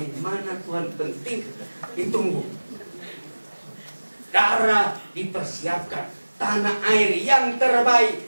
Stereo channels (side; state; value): both; inverted; correlation -1.00